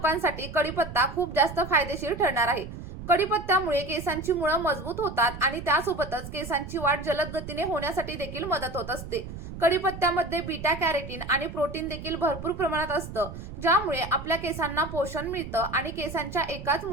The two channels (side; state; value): right; noise; rumble, 10 dB below the sound